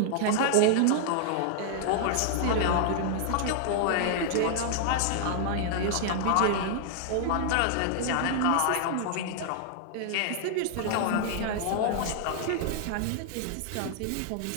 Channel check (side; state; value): both; different; correlation -0.01